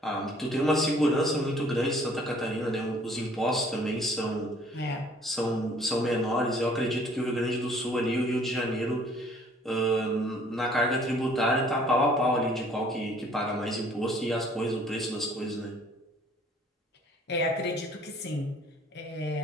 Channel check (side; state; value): both; normal; correlation 0.57